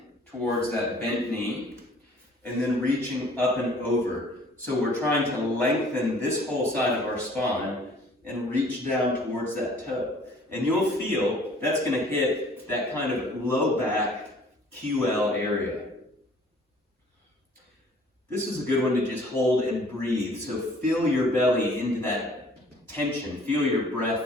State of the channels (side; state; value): both; normal; correlation 0.54